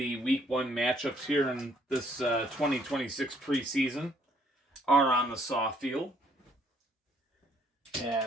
Week 1 matchups here in this 2026 preseason are on the soft field.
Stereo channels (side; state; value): both; normal; correlation 0.65